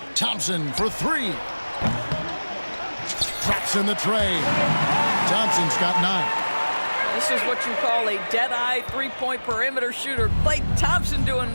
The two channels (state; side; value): inverted; both; correlation -1.00